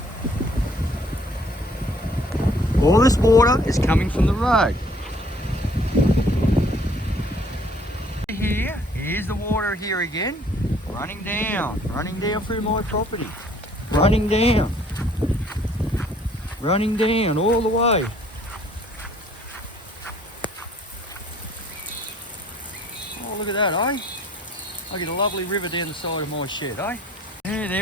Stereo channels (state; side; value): normal; both; correlation 0.59